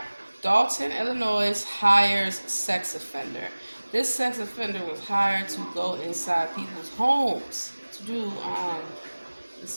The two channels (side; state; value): both; inverted; correlation -1.00